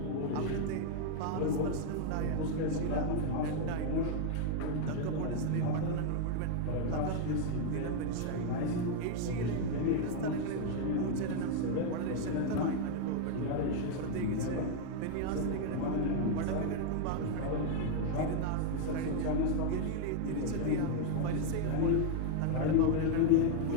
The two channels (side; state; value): both; different; correlation 0.00